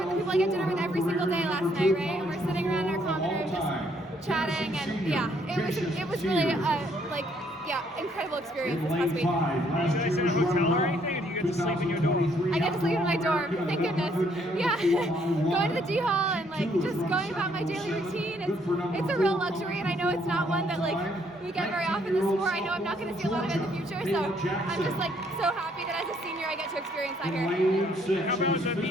the people I get dinner with every single day last night, right? And we're sitting around in our common room just chatting, and yeah, it was really incredible experience this past week. Did I stay in a hotel or anything? And you get to sleep in your dorm? I get to sleep in my dorm, thank goodness. Yeah, going to the D Hall and just going about my daily routine. It's a real luxury, and I know it's not one that we get very often in the sport. I know I'm not going to see a lot of it in the future, so I'm just so happy that as a senior I get to experience that here. How about the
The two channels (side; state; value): both; normal; correlation 0.68